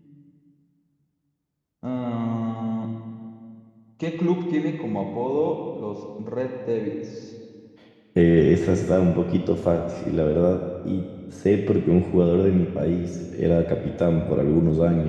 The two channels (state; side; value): identical; both; correlation 1.00